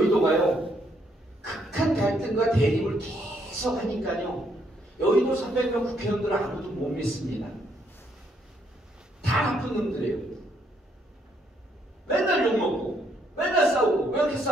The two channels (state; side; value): normal; both; correlation 0.72